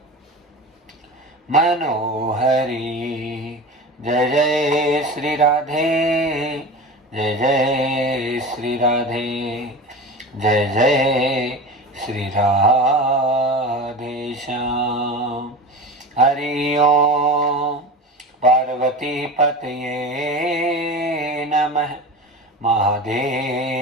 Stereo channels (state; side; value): normal; both; correlation 0.30